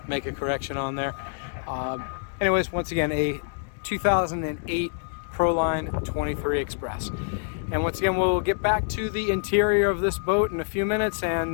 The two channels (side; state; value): right; silent; digital silence